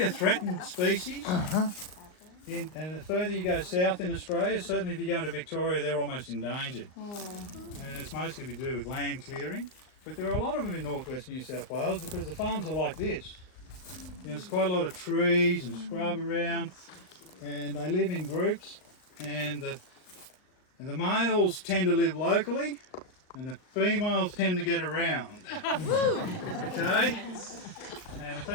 a threatened species. And the further you go south in Australia, certainly if you go to Victoria, they're almost endangered. And it's mostly to do with land clearing. But there are a lot of them in northwest New South Wales because the farms are like this. There's quite a lot of trees and scrub around, and they live in groups. And the males tend to live locally, and the females tend to get around. Okay? And the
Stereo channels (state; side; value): late; right; 39 ms